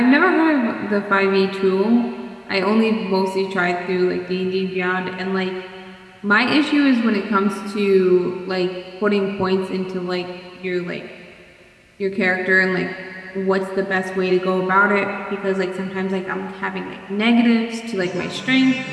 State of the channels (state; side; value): identical; both; correlation 1.00